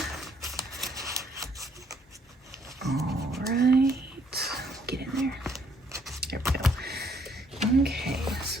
All right, get in there. There we go. Okay,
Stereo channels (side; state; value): both; normal; correlation 0.67